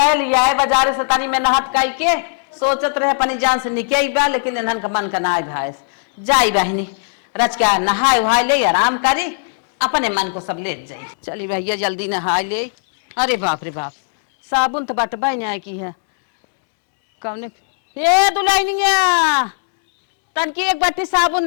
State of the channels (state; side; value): silent; right; digital silence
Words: लिया है बाजारे से तनी में नहत कई के सोचत रहे अपनी जान से निकल बा, लेकिन इन्हन का मन का ना भाई जाई बहनी रच क्या नहाए वहाए ले आराम करी अपने मन को सब ले जाई। चली भैया जल्दी नहा ले। अरे बाप रे बाप साबुन तो बटबा नहीं की है कौन। ये दुल्हनिया तन की एक बाटी साबुन